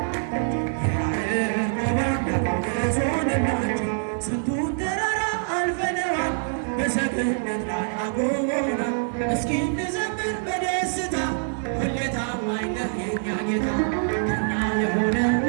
እንዘምር በደስታ ሁሌ ታማኝ ነህ የኛ ጌታ ከኛ የሆነ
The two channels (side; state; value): left; silent; digital silence